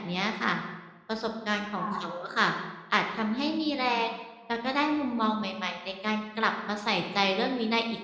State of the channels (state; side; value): identical; both; correlation 1.00